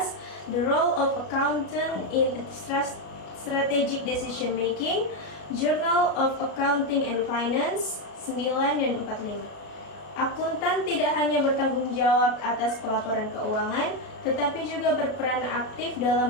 The Role of Accountant in Strategic Decision Making, Journal of Accounting and Finance, 9 dan 45. Akuntan tidak hanya bertanggung jawab atas pelaporan keuangan, tetapi juga berperan aktif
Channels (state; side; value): late; right; 33 ms